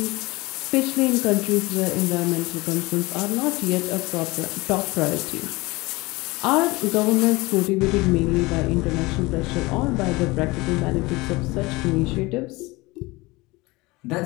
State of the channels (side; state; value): right; quieter; 22.5 dB